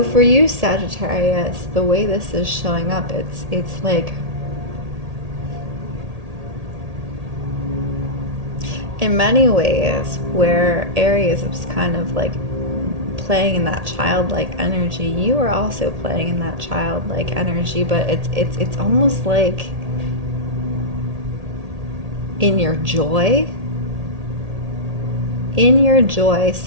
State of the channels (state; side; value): late; left; 1.8 ms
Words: for you, Sagittarius, the way this is showing up, it's like, in many ways, where Aries is kind of like playing in that childlike energy, you are also playing in that childlike energy, but it's almost like in your joy,